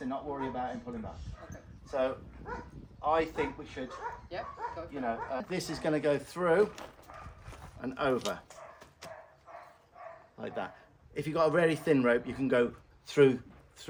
and not worry about him pulling back. Okay. So I think we should, Yep. Go you know, this is going to go through and over like that. If you've got a very thin rope, you can go through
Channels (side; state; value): both; identical; correlation 1.00